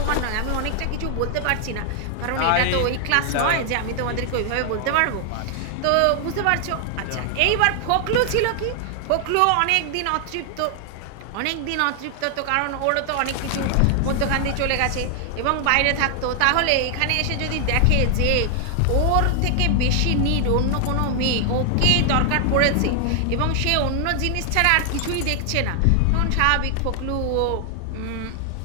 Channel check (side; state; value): both; different; correlation 0.00